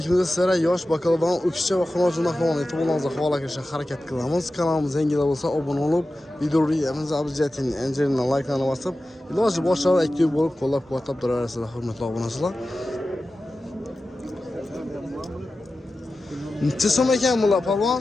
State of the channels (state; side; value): normal; both; correlation 0.94